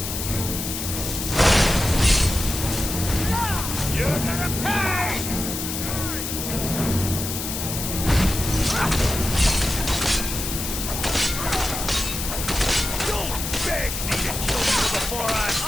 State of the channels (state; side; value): noise; left; hiss, 5 dB below the sound